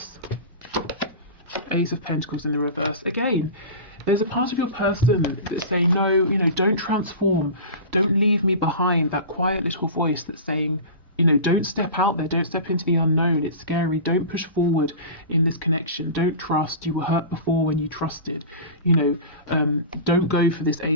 Ace of Pentacles in the reverse. Again, there's a part of your person that's saying, no, you know, don't transform. Don't leave me behind. That quiet little voice that's saying, you know, don't step out there. Don't step into the unknown. It's scary. Don't push forward in this connection. Don't trust. You were hurt before when you trusted. You know, don't go for this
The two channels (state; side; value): inverted; both; correlation -0.31